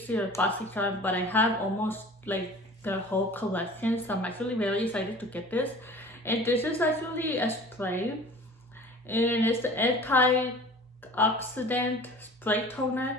or BoxyCharm, but I have almost like their whole collection, so I'm actually very excited to get this. And this is actually a spray, and it's the antioxidant spray toner.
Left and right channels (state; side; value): normal; both; correlation 0.43